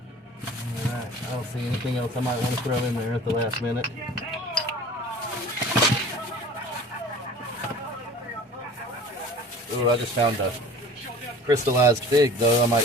Alright, I don't see anything else I might want to throw in there at the last minute. Ooh, I just found a crystallized fig, though, I might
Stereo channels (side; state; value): both; normal; correlation 0.43